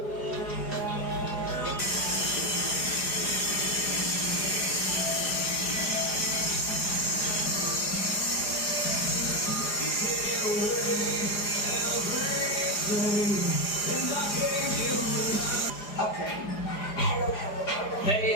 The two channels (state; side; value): late; right; 4.9 ms